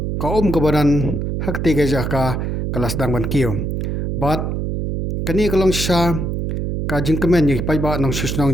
kaum kebadan hak tiga jaka kelas dang ban kiyo bat kani kalong sha kajing kermen ni kipai ba nong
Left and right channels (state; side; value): noise; right; hum, 2 dB below the sound